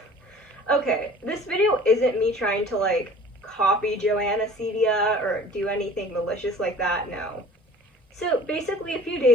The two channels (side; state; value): both; normal; correlation 0.46